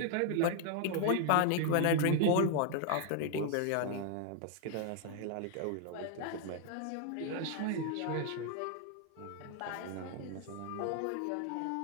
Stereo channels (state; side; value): different; both; correlation 0.00